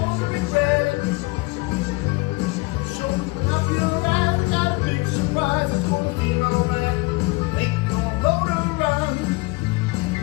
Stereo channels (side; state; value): right; quieter; 24.3 dB